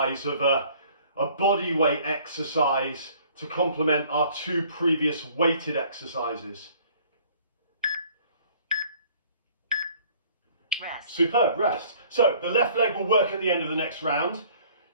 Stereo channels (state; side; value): inverted; both; correlation -0.56